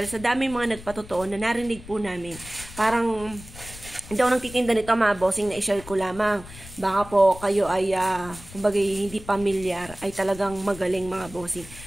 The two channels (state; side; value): noise; left; rumble, 16 dB below the sound